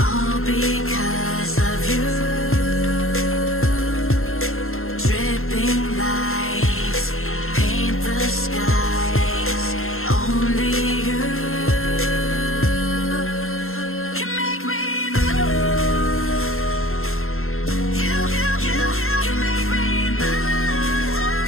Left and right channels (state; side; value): late; right; 0.61 ms